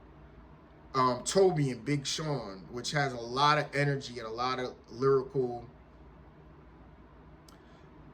Toby and Big Sean, which has a lot of energy and a lot of lyrical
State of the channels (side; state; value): both; identical; correlation 1.00